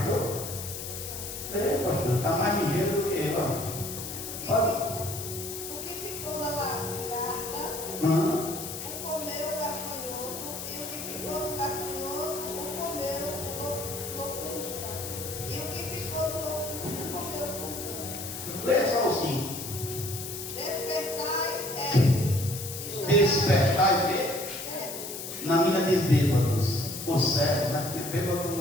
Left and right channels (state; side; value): noise; left; hiss, 8 dB below the sound